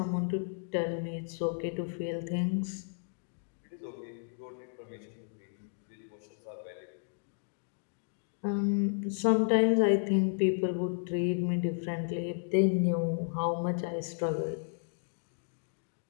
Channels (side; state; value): right; silent; digital silence